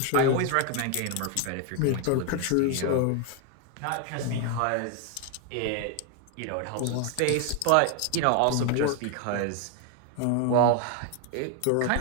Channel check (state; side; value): different; both; correlation 0.01